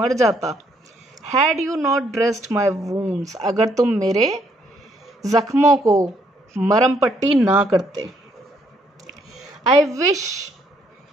जाता। Had you not dressed my wounds, अगर तुम मेरे जख्मों को मरम पट्टी ना करते। I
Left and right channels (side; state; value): both; normal; correlation 0.70